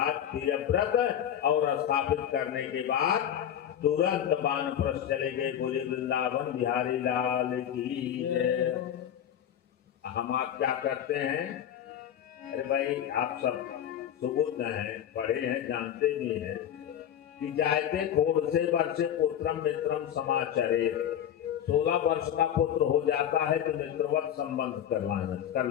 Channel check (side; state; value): right; quieter; 10.0 dB